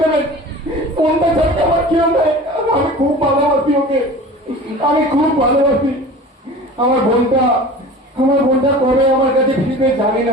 দেবেন। বোনটা ছাড়তে আমার কেউ নেই, আমি খুব ভালোবাসি ওকে, আমি খুব ভালোবাসি। আমার বোনটা কবে আমার কাছে ফিরবে জানি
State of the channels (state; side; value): normal; both; correlation 0.38